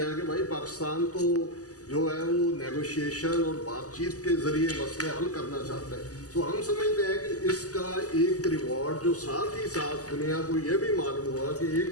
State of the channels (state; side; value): late; right; 0.67 ms